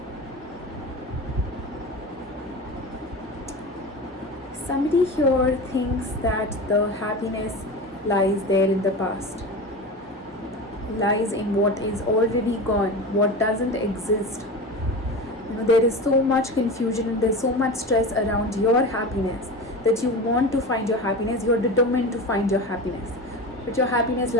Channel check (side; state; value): both; normal; correlation 0.28